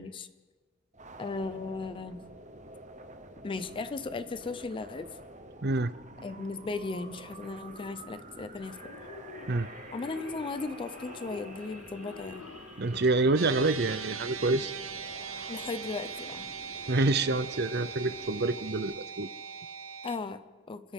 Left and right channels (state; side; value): normal; both; correlation 0.32